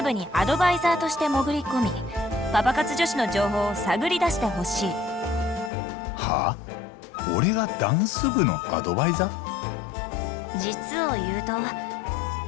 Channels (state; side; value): drops out; right; at 5.7 s